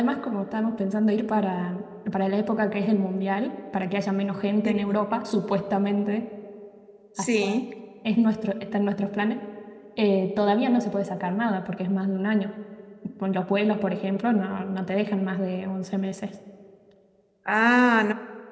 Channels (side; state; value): both; identical; correlation 1.00